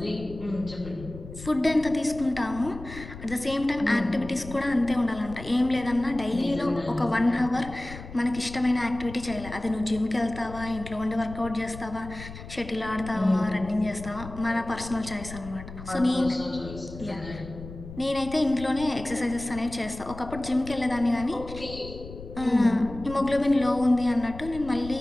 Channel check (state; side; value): noise; left; rumble, 13 dB below the sound